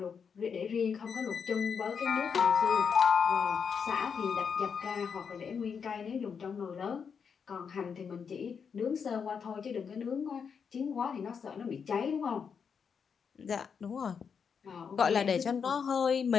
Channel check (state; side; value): quieter; right; 6.5 dB